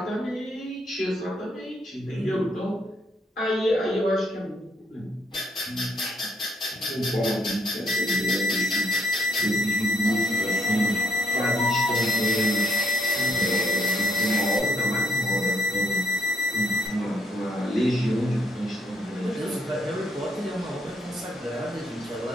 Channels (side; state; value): both; normal; correlation 0.73